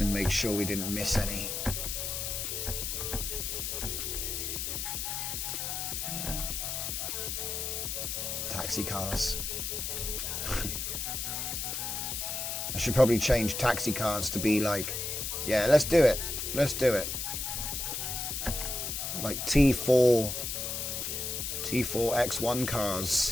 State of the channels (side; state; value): left; noise; hiss, 3 dB below the sound